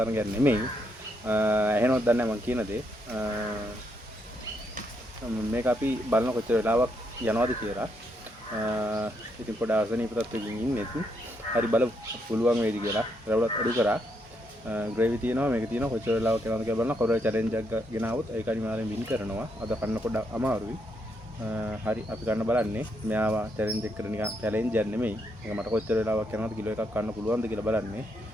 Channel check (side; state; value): both; normal; correlation 0.77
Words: තරංගයක් නෙමෙයි. ඇහෙනවද දන්නේ නැහැ මං කියන දේ. මේක අපි බලන කොච්චර වෙලාවක් යනවද කියලා. ඉතින් පොඩ ආසනීප තත්ත්වයකින් ඉන්නේ. හරි බලමු පුළුවන් වේද කියලා. රවුලත් අඩු කරා. ග්‍රේවි තියෙනවා මේක තියෙනවා කොච්චර වෙලාවක් යනවද කියලා බලනවා. කොරේ චැලෙන්ජ් එකක් ගෙනාවොත් ඒක අනිවාර්යෙන් වින් කරනවා. අද කන්න පොඩ්ඩක් අමාරුයි. හරි අපි ගන්න බලන්නේ මෙයාව චැලෙන්ජ් එක කරන නිකන් චැලෙන්ජ් එකක් නෙමෙයි. මේක මට කොච්චර වෙලාවක් යනවද කිලෝ එකක් කන්න පුළුවන්ද කියලා බලන්නේ.